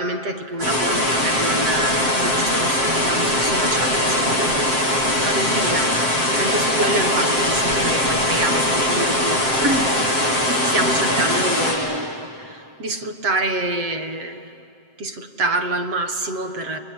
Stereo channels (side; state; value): left; late; 7.6 ms